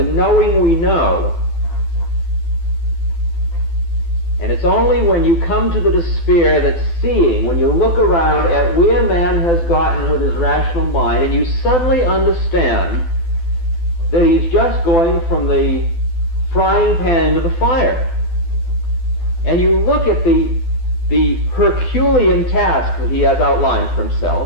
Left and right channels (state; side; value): late; right; 12 ms